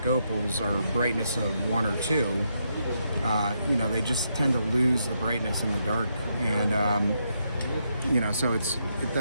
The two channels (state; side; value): inverted; both; correlation -0.79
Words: opals are brightness of 1 or 2. They just tend to lose the brightness in the dark, and so